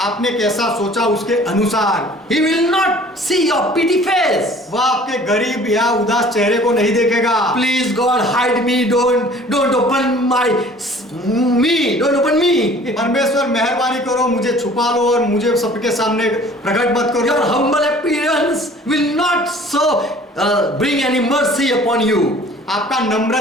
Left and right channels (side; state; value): both; normal; correlation 0.50